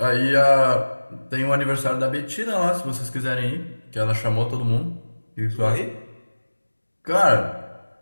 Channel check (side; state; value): both; inverted; correlation -1.00